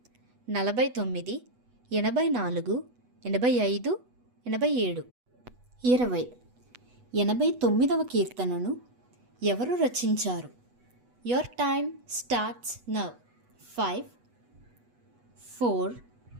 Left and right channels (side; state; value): left; late; 8.1 ms